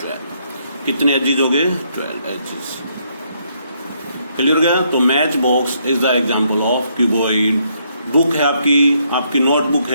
12. कितने एजेस हो गए? 12 एजेस. क्लियर हो गया? तो match box is the example of cuboid. Book है आपकी नोटबुक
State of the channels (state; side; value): inverted; both; correlation -0.73